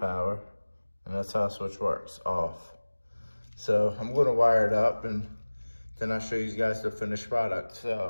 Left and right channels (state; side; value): inverted; both; correlation -1.00